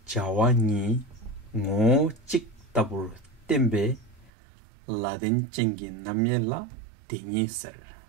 Jawa Ni Ngo Chik Tabur Tembe Ladin Chingi Namyela Tingi Ser.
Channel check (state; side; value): drops out; left; at 4.3 s